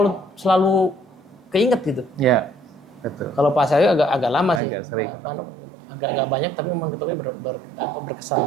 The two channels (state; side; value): drops out; left; at 4.6 s